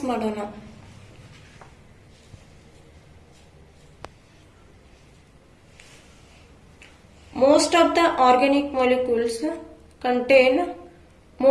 ಮಾಡೋಣ. Most of the organic molecules contain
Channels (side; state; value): both; identical; correlation 1.00